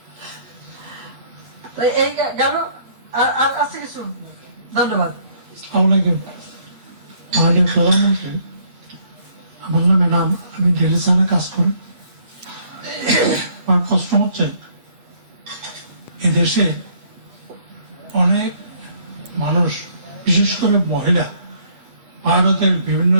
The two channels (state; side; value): late; left; 8.5 ms